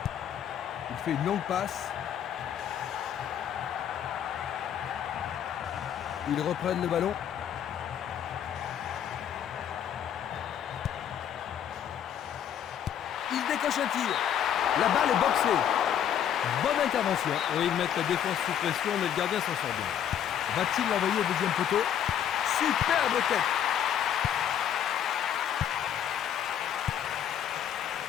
Il fait une longue passe. Ils reprennent le ballon. Il décoche un tir. La balle est boxée. Bonne intervention. Oui, ils mettent la défense sous pression, mais le gardien s'en sort bien. Va-t-il l'envoyer au deuxième poteau? Superbe tête.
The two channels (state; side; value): quieter; right; 9.5 dB